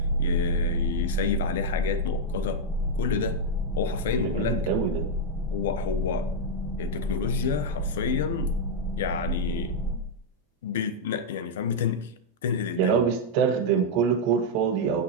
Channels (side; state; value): both; normal; correlation -0.02